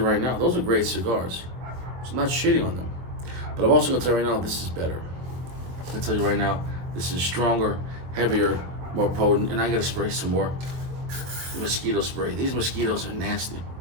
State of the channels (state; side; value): late; left; 23 ms